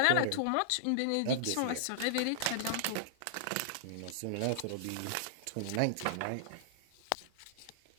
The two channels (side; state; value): both; different; correlation -0.01